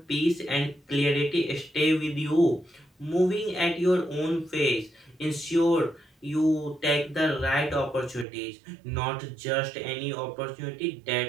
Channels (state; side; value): drops out; left; at 8.2 s